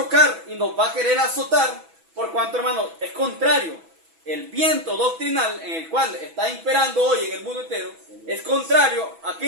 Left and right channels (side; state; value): left; late; 6.1 ms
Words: y nos va a querer azotar por cuanto, hermano, es contrario. El viento doctrinal en el cual está imperando hoy en el mundo entero es contrario ¿a